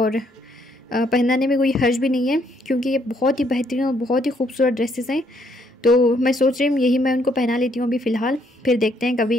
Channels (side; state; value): both; normal; correlation 0.70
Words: पहनाने में कोई हर्ज भी नहीं है, क्योंकि ये बहुत ही बेहतरीन और बहुत ही खूबसूरत ड्रेसेस हैं। तो मैं सोच रही हूँ यही मैं उनको पहना लेती हूँ अभी फ़िलहाल। फिर देखते हैं